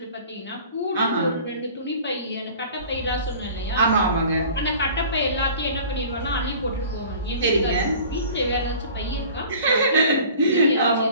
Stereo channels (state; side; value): inverted; both; correlation -0.45